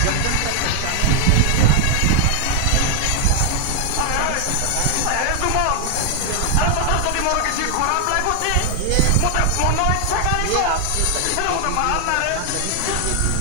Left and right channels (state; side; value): different; both; correlation 0.00